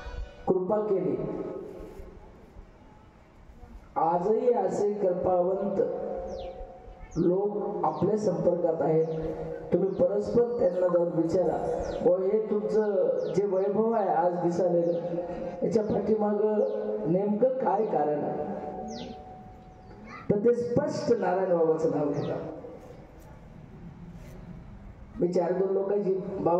कृपा केली, आजही असे कृपावंत लोक आपल्या संपर्कात आहेत. तुम्ही परस्पर त्यांना जाऊन विचारा, व हे तुमचं जे वैभव आहे आज दिसालेलं, याच्या पाठीमाग नेमकं काय कारण आहे, तर ते स्पष्ट नारायण बाबाचं नाव घेतात. मी 4-2 लोकांची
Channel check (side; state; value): both; identical; correlation 1.00